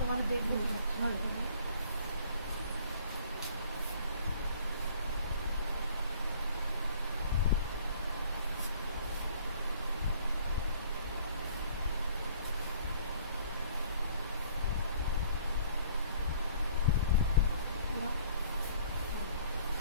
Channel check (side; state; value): both; inverted; correlation -0.55